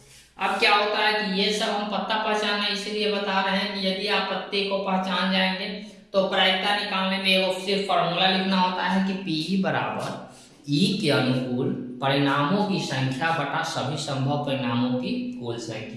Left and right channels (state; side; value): identical; both; correlation 1.00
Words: अब क्या होता है कि ये सब हम पत्ता पहचानना इसलिए बता रहे हैं कि यदि आप पत्ते को पहचान जाएंगे तो प्रायिकता निकालने में एगो सिर्फ फॉर्मूला लिखना होता है कि P बराबर ई के अनुकूल परिणामों की संख्या बटा सभी संभव परिणामों की कुल